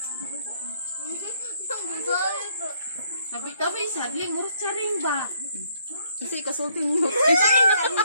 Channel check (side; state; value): both; inverted; correlation -0.68